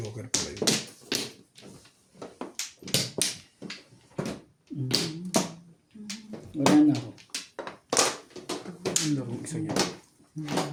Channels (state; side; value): identical; both; correlation 1.00